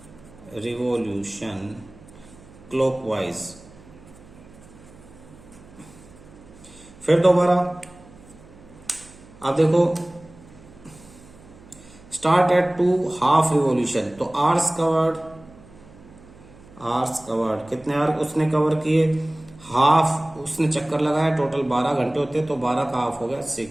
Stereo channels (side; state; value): right; noise; hum, 22 dB below the sound